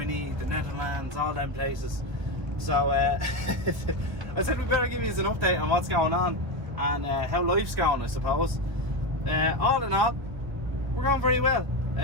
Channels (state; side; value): late; left; 1.5 ms